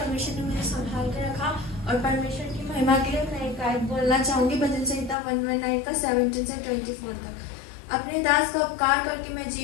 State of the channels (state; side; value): drops out; right; at 5.2 s